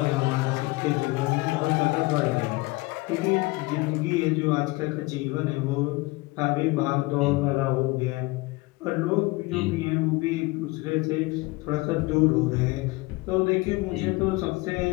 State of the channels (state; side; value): quieter; right; 23.0 dB